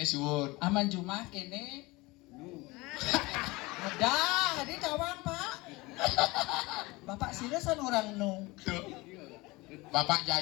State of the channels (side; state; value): right; quieter; 22.6 dB